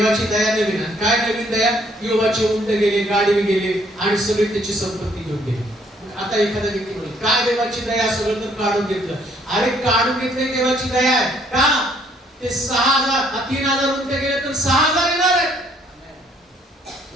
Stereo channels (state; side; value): normal; both; correlation 0.65